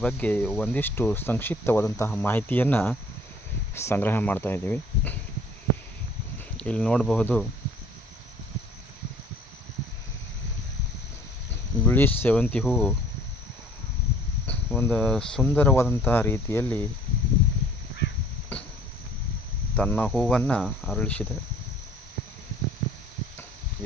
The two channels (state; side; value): normal; both; correlation 0.55